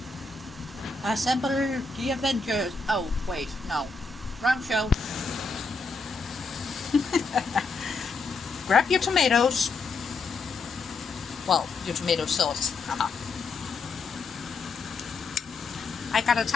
Assemble the Avengers. Oh, wait, no. Wrong show. Grab your tomatoes. Well, your tomato sauce. I got a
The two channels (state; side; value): quieter; right; 4.1 dB